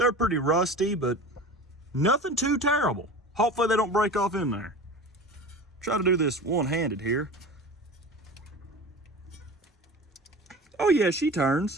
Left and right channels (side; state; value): both; normal; correlation 0.35